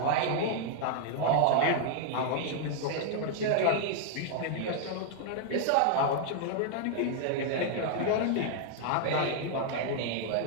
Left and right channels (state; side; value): different; both; correlation -0.01